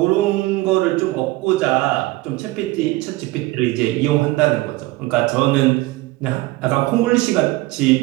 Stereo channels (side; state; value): left; quieter; 19.7 dB